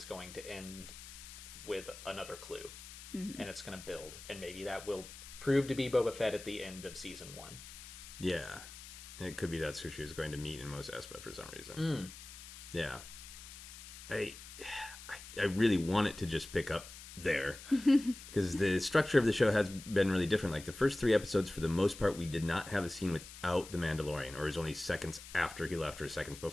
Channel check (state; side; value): noise; left; hiss, 14 dB below the sound